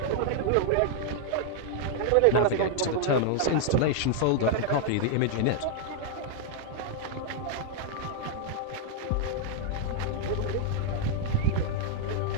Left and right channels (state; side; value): different; both; correlation 0.00